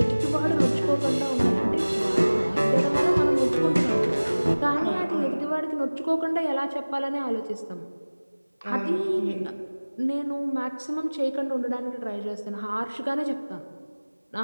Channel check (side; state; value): both; inverted; correlation -1.00